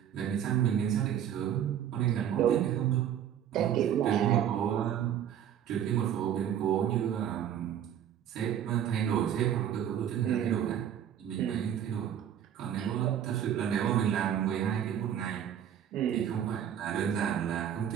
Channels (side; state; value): left; quieter; 9.8 dB